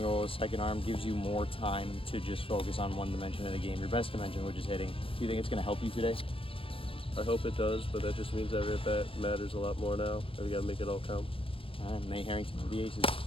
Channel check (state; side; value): late; right; 0.26 ms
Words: as second arm gives you more time to just focus on one dimension of the game, your best dimension, which is hitting. Do you think it's going to help you today? I hope it does, but that just means every at-bat matters a lot more now, and we gotta make it all count. All right, Nate Harrington of the Aces.